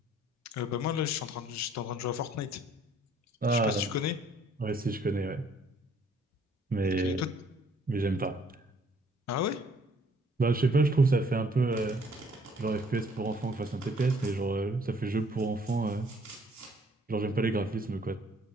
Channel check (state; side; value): normal; both; correlation 0.61